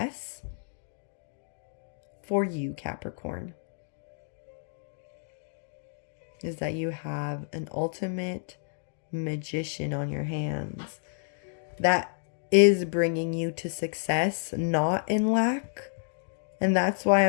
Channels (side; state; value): right; silent; 58 dB below the other